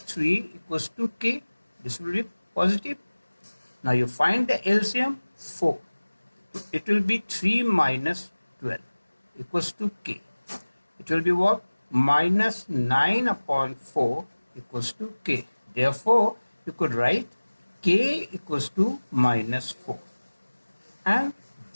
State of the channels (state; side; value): inverted; both; correlation -1.00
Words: equals to k. This will be positive. Now you find the LCM 4. It will be 3 minus 12 equals to k. It will be what? Minus 9 upon 4 equals to k. Therefore, you could write k equals to minus 4. And